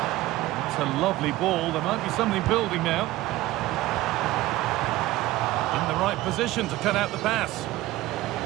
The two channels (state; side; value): quieter; left; 17.1 dB